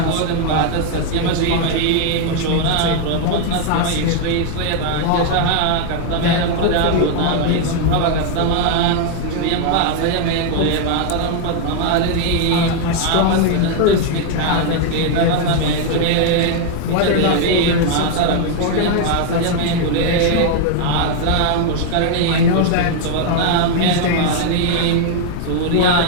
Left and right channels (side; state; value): both; different; correlation 0.00